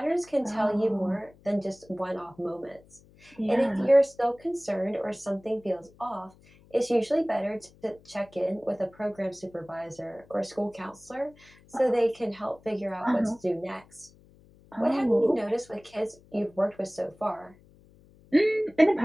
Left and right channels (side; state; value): left; noise; hum, 27 dB below the sound